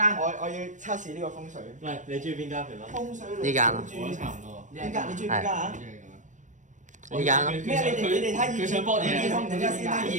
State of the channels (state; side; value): late; left; 0.36 ms